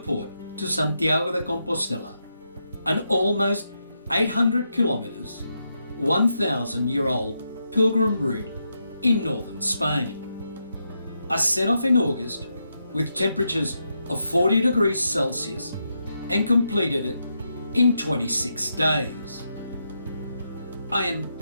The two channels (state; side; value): inverted; both; correlation -0.83